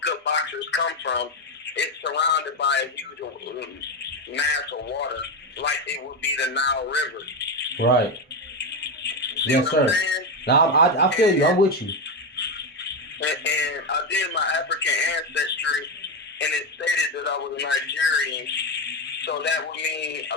good boxers come from. It's surrounded by a huge mass of water, like it would be the Nile River. Right. See Yes, sir. Now I feel you. I'm with you. And I did my African ancestry, and it stated that I was a Nigerian. So that would mean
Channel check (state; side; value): normal; both; correlation 0.11